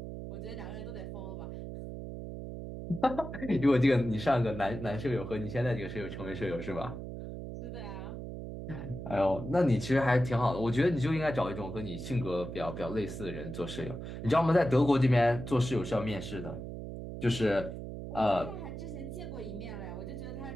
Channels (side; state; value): right; noise; hum, 8 dB below the sound